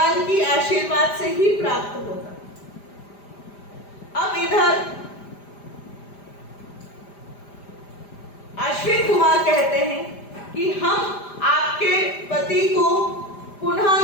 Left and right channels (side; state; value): right; late; 5.0 ms